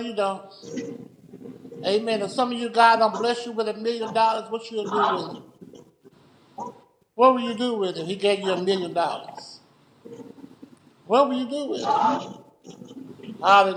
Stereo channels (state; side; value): identical; both; correlation 1.00